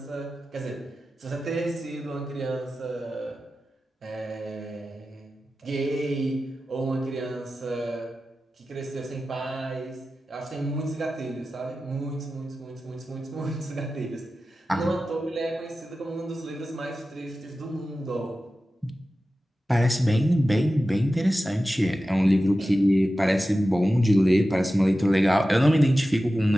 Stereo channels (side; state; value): both; normal; correlation 0.94